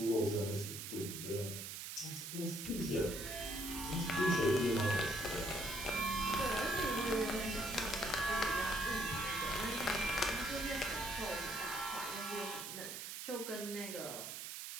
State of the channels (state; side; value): noise; right; hiss, 7 dB below the sound